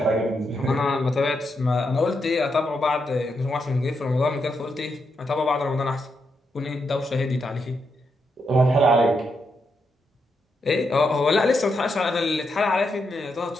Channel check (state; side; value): normal; both; correlation 0.82